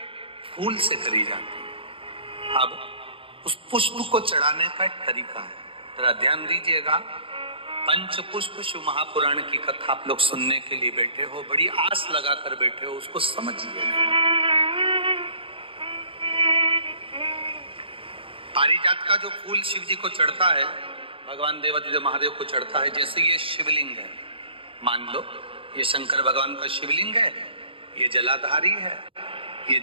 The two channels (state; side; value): late; left; 0.26 ms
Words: फूल से करी जाती है। अब उस पुष्प को चढ़ाने का एक तरीका है, जरा ध्यान दीजिएगा। पंच पुष्प शिव महापुराण की कथा आप लोग सुनने के लिए बैठे हो, बड़ी आस लगाकर बैठे हो, उसको समझिए। पारिजात का जो फूल शिव जी को चढ़ता है, भगवान देवाधिदेव महादेव को चढ़ता है, जैसे ये शिवलिंग है, मान लो ये शंकर भगवान का शिवलिंग है, ये जलाधारी है, ये